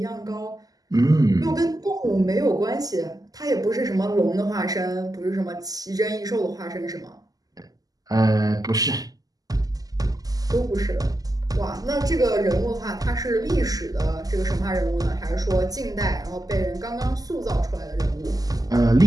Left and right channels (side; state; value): left; late; 0.17 ms